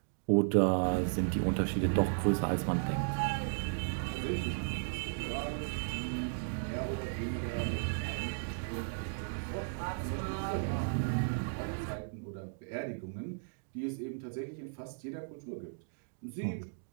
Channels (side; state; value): left; silent; digital silence